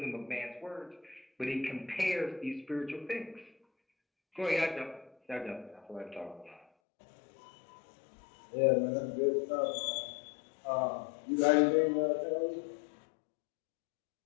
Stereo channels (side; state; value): right; drops out; at 6.7 s